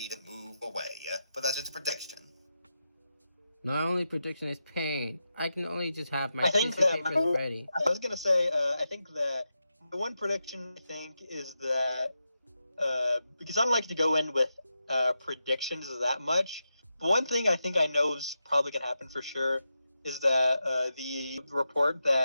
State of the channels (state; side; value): inverted; both; correlation -0.88